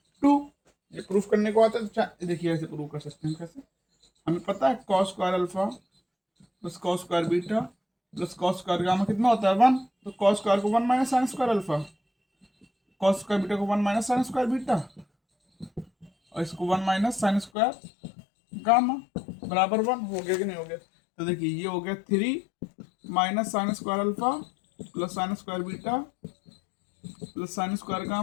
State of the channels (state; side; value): drops out; right; at 17.5 s